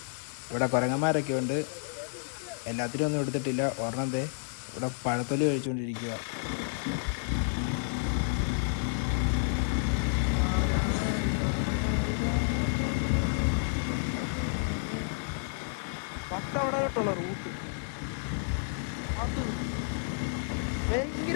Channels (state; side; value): silent; right; digital silence